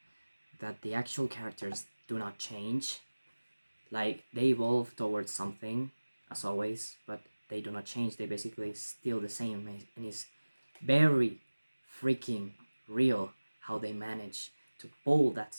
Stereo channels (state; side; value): inverted; both; correlation -1.00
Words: that the actual characters do not change. Like, they evolve towards something, as always, but they do not change. They basically still the same, and it's very freaking real how they manage to pull that